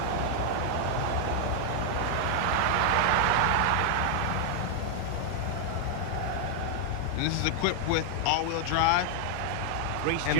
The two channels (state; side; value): different; both; correlation 0.00